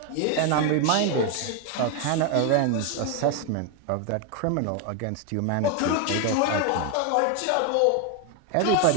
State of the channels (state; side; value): different; both; correlation 0.01